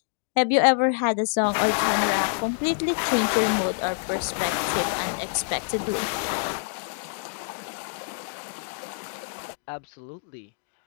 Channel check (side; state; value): right; silent; digital silence